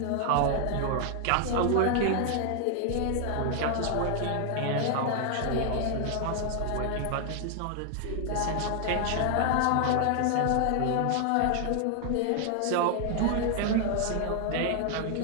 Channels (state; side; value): different; both; correlation 0.00